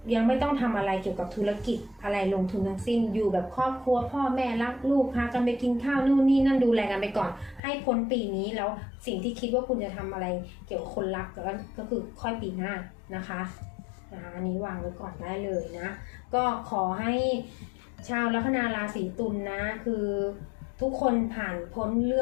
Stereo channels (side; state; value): right; drops out; at 7.6 s